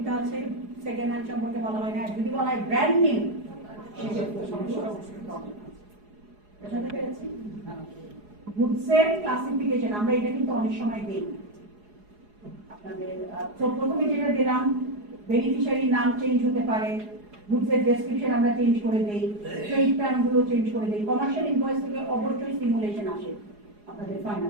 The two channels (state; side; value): late; left; 4.8 ms